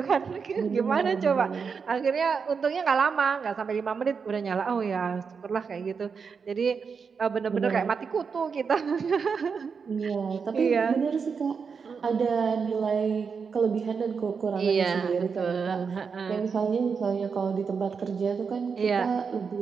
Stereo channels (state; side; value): quieter; left; 5.8 dB